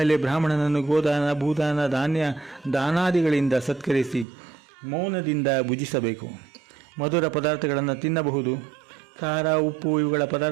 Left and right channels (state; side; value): drops out; left; at 4.2 s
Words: ಬ್ರಾಹ್ಮಣನನ್ನು ಗೋದಾನ, ಭೂದಾನ, ದಾನಾದಿಗಳಿಂದ ಸತ್ಕರಿಸಿ ಮೌನದಿಂದ ಭುಜಿಸಬೇಕು. ಮಧುರ ಪದಾರ್ಥಗಳನ್ನು ತಿನ್ನಬಹುದು. ಖಾರ, ಉಪ್ಪು ಇವುಗಳ